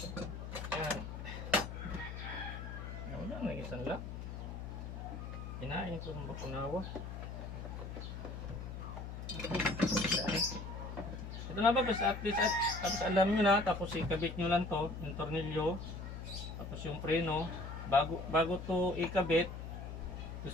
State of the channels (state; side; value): noise; left; hum, 8 dB below the sound